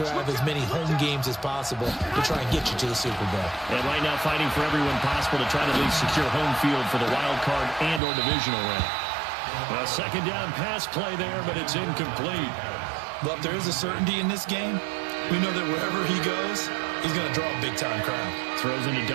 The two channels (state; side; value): drops out; left; at 8.0 s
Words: as many home games as possible to try and get you to the Super Bowl. And right now fighting for everyone possible to try to at least secure home field for the wild card and or divisional round. A second down pass play there, but it's incomplete. Well, if there is a certainty in this game, we know that wherever he goes, he's going to draw a big-time crowd. Throws into